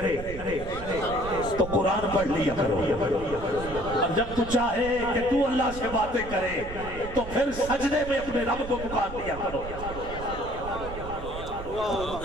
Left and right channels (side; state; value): right; noise; rumble, 10 dB below the sound